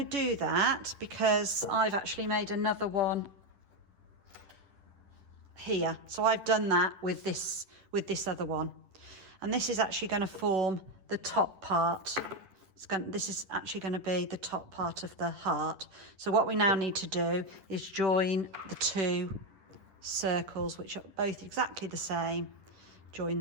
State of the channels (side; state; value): left; late; 10 ms